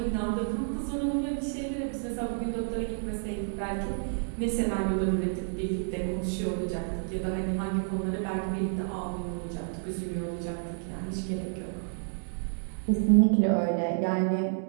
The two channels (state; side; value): silent; left; digital silence